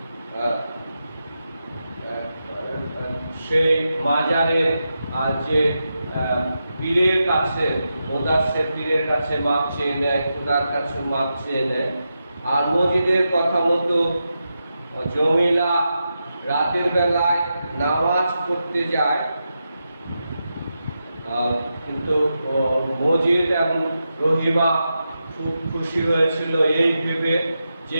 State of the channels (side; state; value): both; inverted; correlation -0.88